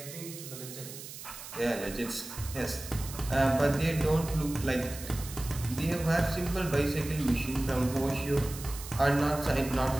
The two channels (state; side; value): noise; right; hiss, 12 dB below the sound